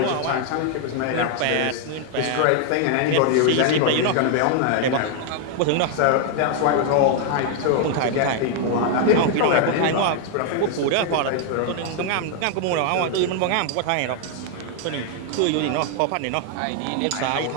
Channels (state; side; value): different; both; correlation 0.00